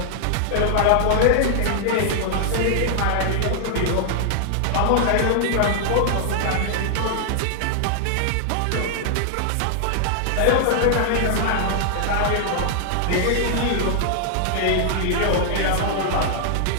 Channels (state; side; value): different; both; correlation -0.01